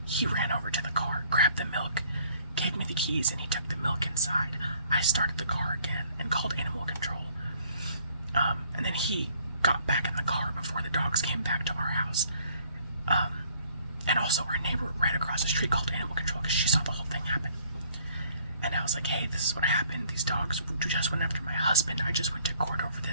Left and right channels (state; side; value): inverted; both; correlation -0.60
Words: He ran over to the car, grabbed the milk, gave me the keys, and he took the milk inside. I started the car again and called animal control. And then he got back in the car before the dogs came back to our house. And also our neighbor right across the street called animal control because she saw the whole thing happen. And I was like, "Hey, this is what happened. These dogs just went after my husband. I just went to court over